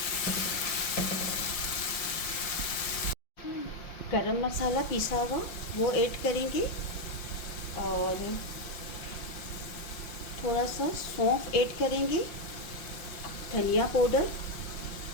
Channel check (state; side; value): late; right; 5.6 ms